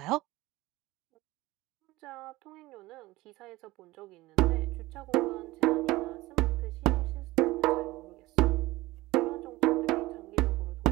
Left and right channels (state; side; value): quieter; left; 19.1 dB